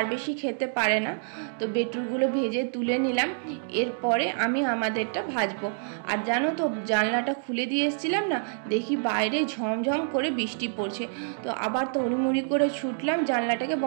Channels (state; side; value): silent; left; digital silence